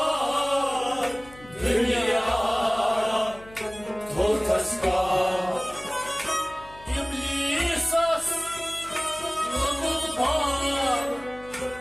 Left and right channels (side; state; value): left; noise; hum, 21 dB below the sound